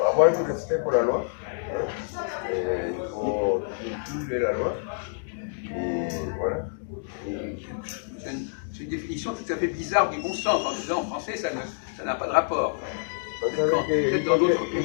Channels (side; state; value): right; silent; digital silence